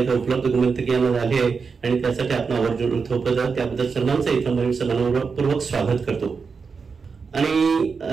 उपलब्ध गुणवंतकीयांना झाली आहे आणि त्यासाठी आपण आवर्जून थोपवत त्याबद्दल सर्वांचं इथं मी समानपूर्वक स्वागत करतो आणि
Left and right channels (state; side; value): quieter; left; 5.2 dB